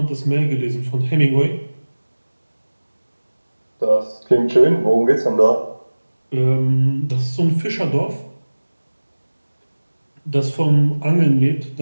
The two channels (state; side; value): inverted; both; correlation -1.00